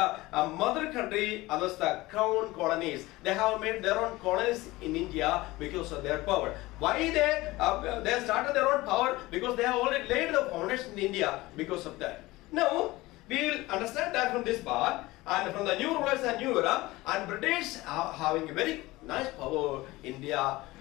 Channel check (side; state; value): right; quieter; 19.7 dB